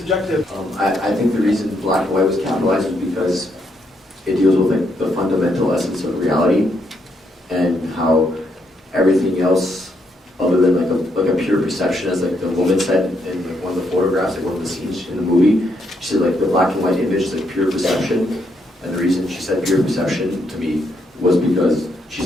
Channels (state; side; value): normal; both; correlation 0.76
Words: I think the reason black and white was capitalized is because it deals with like the fundamental essence of reality and how everything else other than like a pure perception, as like the woman said in like one of the photographs, like one of the scenes in the movie, she said like the black and white image is like pure perception, and the reason she said pure perception to me was because